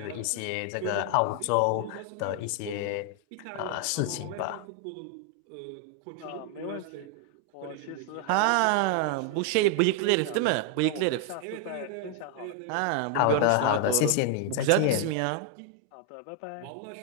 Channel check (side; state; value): both; different; correlation 0.00